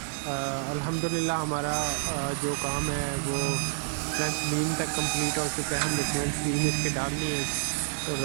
अल्हम्दुलिल्लाह हमारा जो काम है वो फ्रंट बीम तक कंप्लीट हो चुका है। हमने फ्रंट बीम इसके डाल ली है और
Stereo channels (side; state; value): left; silent; digital silence